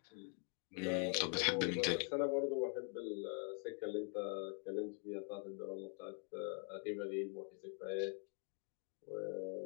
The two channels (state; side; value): quieter; right; 37.9 dB